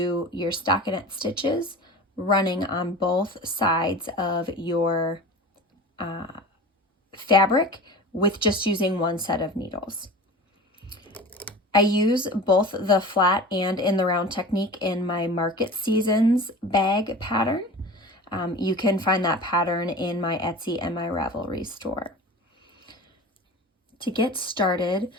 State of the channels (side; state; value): both; normal; correlation 0.36